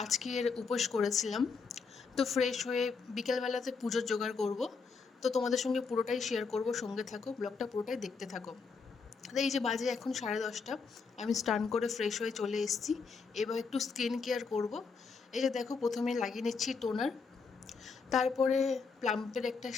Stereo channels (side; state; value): right; quieter; 5.0 dB